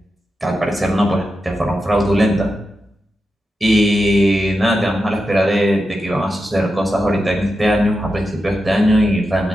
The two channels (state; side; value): normal; both; correlation 0.89